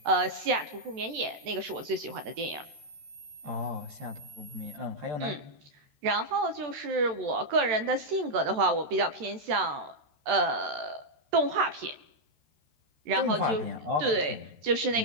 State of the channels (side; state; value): left; late; 13 ms